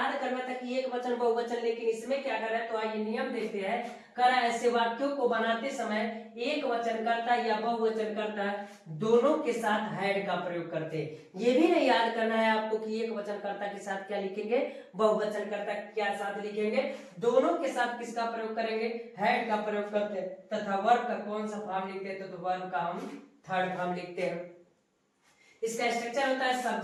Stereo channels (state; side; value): identical; both; correlation 1.00